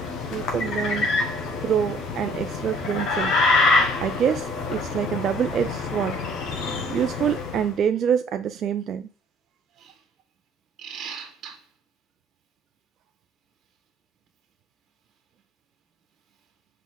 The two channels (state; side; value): normal; both; correlation 0.57